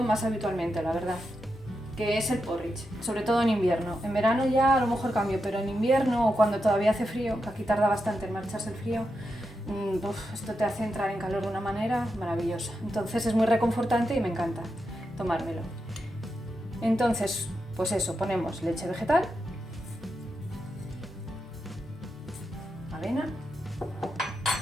más habitualmente, la verdad. que es el porridge, sobre todo en invierno. En verano ya a lo mejor cambio, pero en invierno o cuando todavía hace frío, que aquí tarda bastante en marcharse el frío, esto te hace entrar en calor de una manera maravillosa. Entonces es muy reconfortante y me encanta tomármelo. Entonces, pues eso, ponemos leche vegetal, avena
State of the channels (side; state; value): both; normal; correlation 0.87